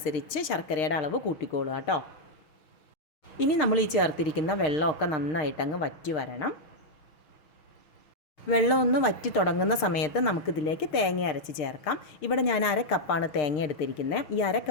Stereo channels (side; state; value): right; late; 6.6 ms